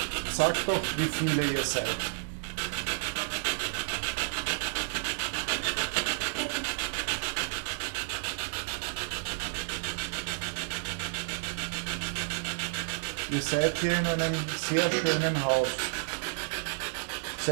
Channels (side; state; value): left; silent; digital silence